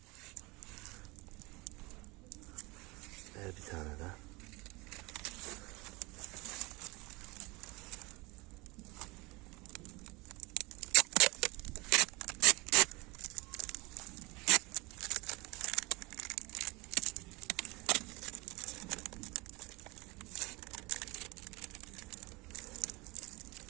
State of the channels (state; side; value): quieter; left; 24.7 dB